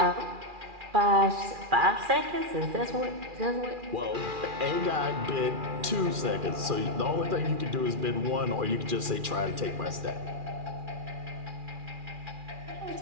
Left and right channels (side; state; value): left; late; 2.4 ms